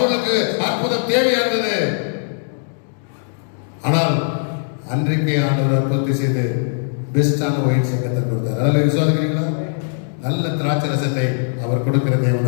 அற்புதம் தேவையா இருந்தது. ஆனால் அன்றைக்கே ஆண்டவர் அற்புதத்தை செய்து பெஸ்டான ஒயின் சங்கத்தை கொடுத்தார். அதில் விசுவாசிக்கிறீங்களா? நல்ல திராட்சை ரசத்தை அவர் கொடுக்கிற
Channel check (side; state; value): right; silent; digital silence